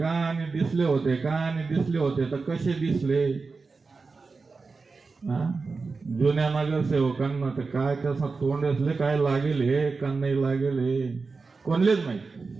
आणि दिसले होते का, आणि दिसले होते तर कसे दिसले? जुन्या नगरसेवकांना तर काय कसं तोंड असले, काय लागेल हे का नाही लागेल हे कोणलेच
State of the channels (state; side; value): quieter; left; 4.3 dB